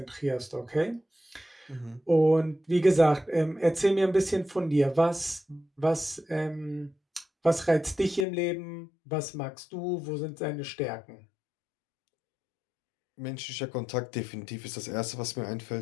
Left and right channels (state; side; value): drops out; right; at 8.2 s